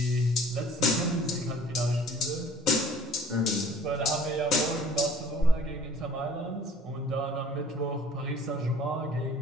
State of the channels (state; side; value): normal; both; correlation 0.52